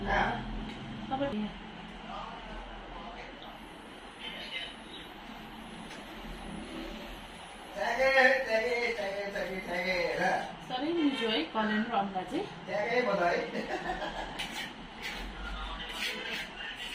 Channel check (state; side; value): identical; both; correlation 1.00